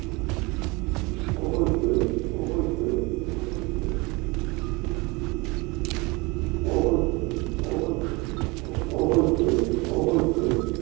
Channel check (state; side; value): quieter; left; 25.6 dB